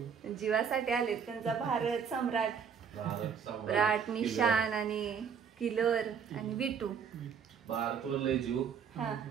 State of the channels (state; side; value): quieter; left; 6.9 dB